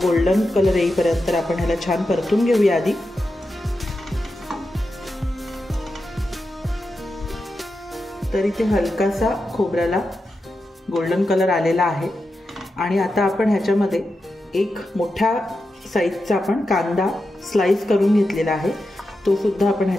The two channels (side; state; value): both; normal; correlation 0.89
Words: गोल्डन कलर येईपर्यंत आपण ह्याला छान परतून घेऊया आधी. तर इथे हलकासा खोबऱ्याला गोल्डन कलर आलेला आहे आणि आता आपण ह्याच्यामध्ये 1 मोठ्या साईजचा आपण कांदा स्लाइस करून घेतलेला आहे. तो सुद्धा आपण